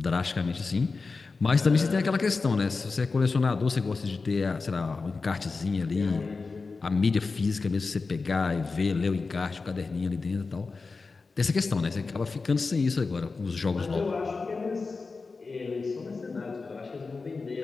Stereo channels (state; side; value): quieter; right; 4.2 dB